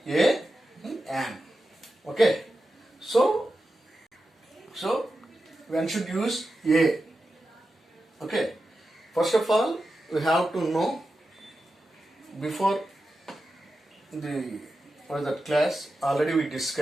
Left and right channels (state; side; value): normal; both; correlation 0.91